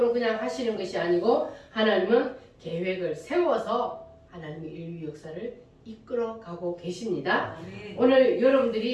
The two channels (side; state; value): both; identical; correlation 1.00